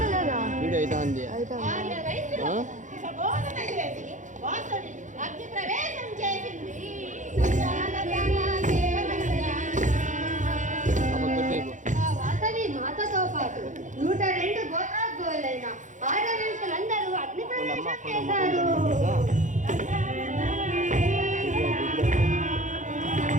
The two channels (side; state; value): left; late; 0.36 ms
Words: లేదా? వీడియో అవుతుంది ఆర్య వైశ్యులకు ప్రబోధన చేసి వాసవి అగ్ని ప్రవేశం చేసింది. ఆ వాసవి మాతతో పాటు 102 గోత్రోద్భవులైన ఆడవేశలందరూ అగ్ని ప్రవేశం చేశారు.